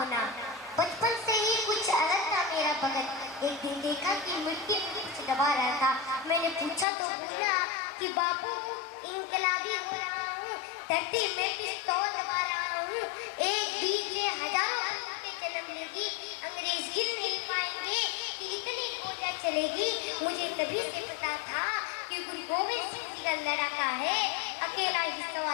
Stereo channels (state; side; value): drops out; right; at 6.9 s